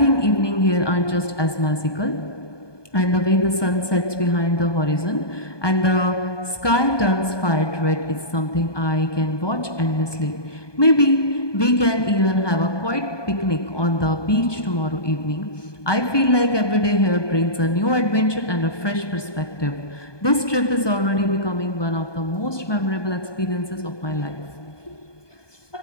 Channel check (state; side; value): late; right; 1.2 ms